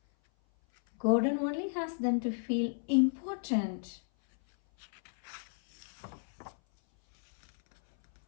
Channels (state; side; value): silent; right; 56 dB below the other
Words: Gordon only has them to feel important.